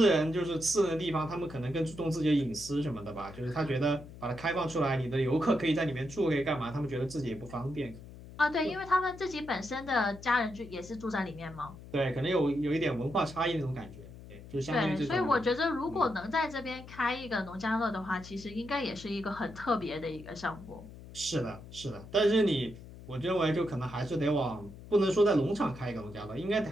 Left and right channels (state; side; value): noise; left; hum, 16 dB below the sound